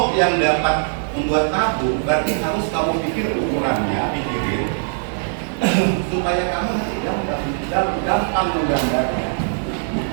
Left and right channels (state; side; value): silent; left; digital silence